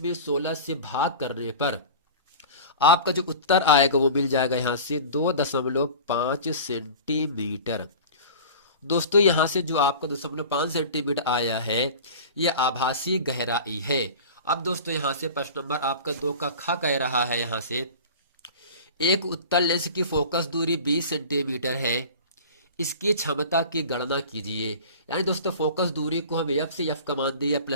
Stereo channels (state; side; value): inverted; both; correlation -0.37